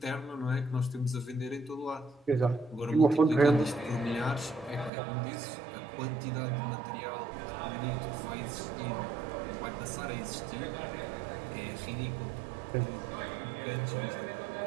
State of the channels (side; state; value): left; drops out; at 4.9 s